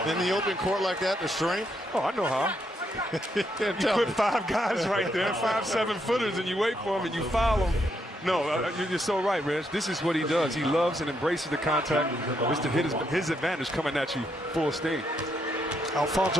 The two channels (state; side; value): normal; both; correlation 0.77